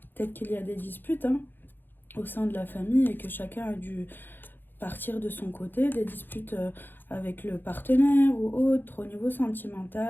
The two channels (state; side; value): late; right; 0.095 ms